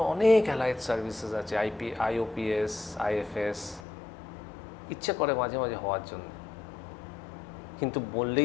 অনেক অ্যালাইড সার্ভিসেস আছে, আইওপিএস, আইএফএস। ইচ্ছে করে মাঝে মাঝে হওয়ার জন্য, কিন্তু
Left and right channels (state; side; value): drops out; right; at 3.8 s